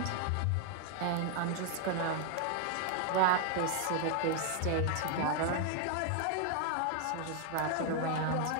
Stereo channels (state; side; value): different; both; correlation 0.00